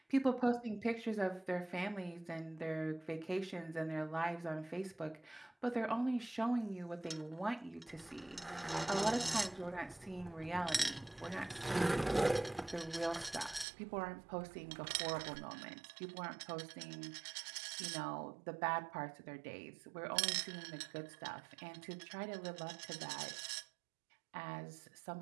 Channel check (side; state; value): left; drops out; at 13.7 s